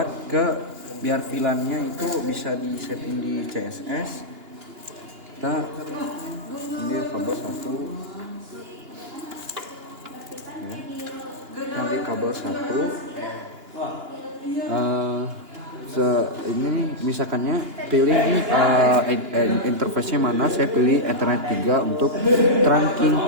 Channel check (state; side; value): late; left; 2.9 ms